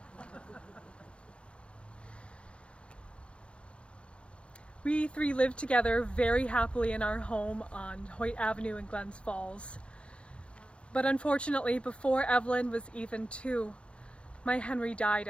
We three lived together very happily in our home on Hoyt Avenue in Glens Falls. But unfortunately, before Evelyn was even 2, my Henry died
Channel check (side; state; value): right; late; 0.059 ms